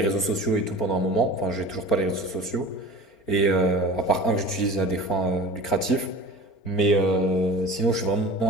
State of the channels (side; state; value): right; late; 4.4 ms